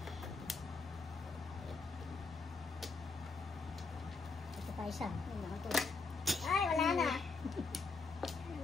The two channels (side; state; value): right; quieter; 4.1 dB